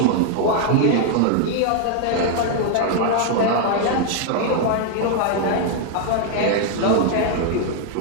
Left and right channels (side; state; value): both; different; correlation 0.00